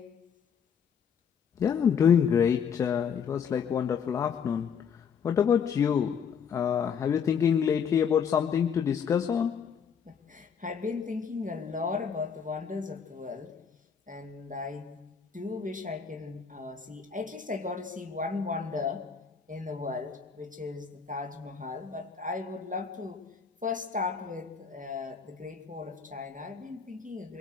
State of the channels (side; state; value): right; quieter; 6.9 dB